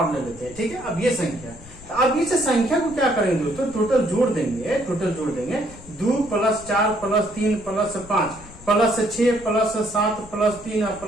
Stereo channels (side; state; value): left; noise; rumble, 19 dB below the sound